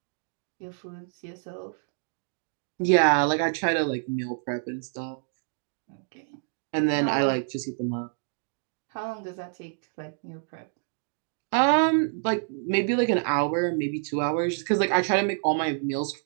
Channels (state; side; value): silent; left; digital silence